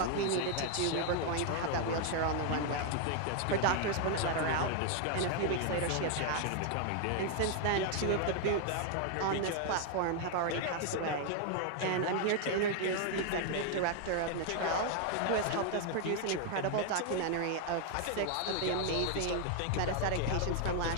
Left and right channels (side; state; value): both; different; correlation 0.00